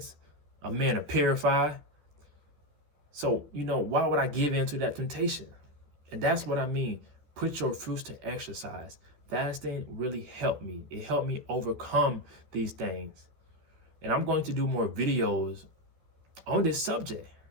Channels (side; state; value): left; late; 13 ms